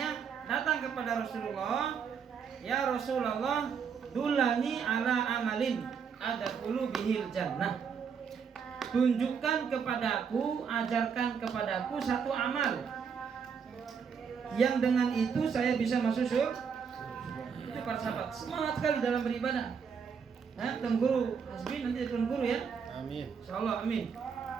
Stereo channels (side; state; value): left; quieter; 6.6 dB